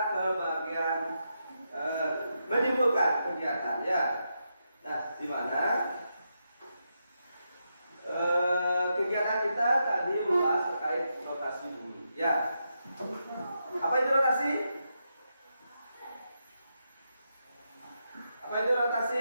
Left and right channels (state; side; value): inverted; both; correlation -0.84